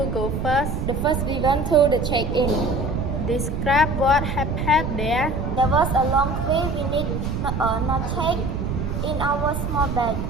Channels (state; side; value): noise; right; rumble, 2 dB below the sound